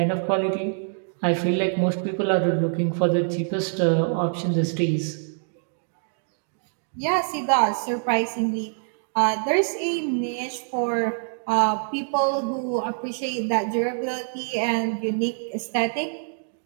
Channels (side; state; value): left; silent; digital silence